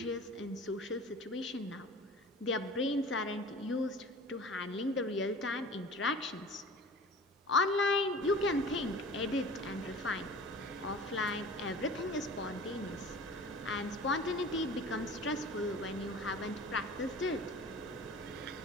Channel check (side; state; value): both; normal; correlation 0.41